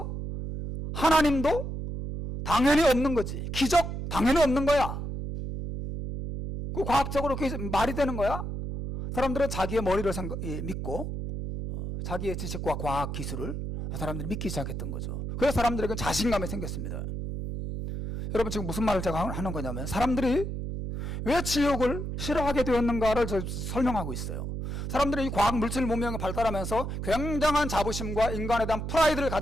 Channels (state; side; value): noise; right; hum, 5 dB below the sound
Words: 하나님도 당연히 없는 거지. 기적 당연히 없는 거야. 그 과학적으로 그게 말이 되는 거야? 사람들은 자기의 머리를 믿고 자기의 지식과 과학 기술을 사람들이 믿기 시작했던 거죠. 그래서 사람들에게 자신감이 생겼습니다. 여러분 지금 무슨 말을 제가 하는 거냐면 사람들이 왜 지옥을 싫어하게 되었는가를 설명하고 있어요. 사람들이 이 과학 물질 문명이 발달하면서 굉장한 자부심과 인간에 대한 프라이드를